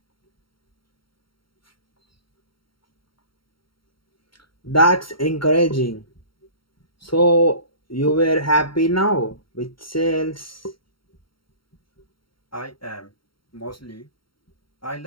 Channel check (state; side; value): late; right; 0.73 ms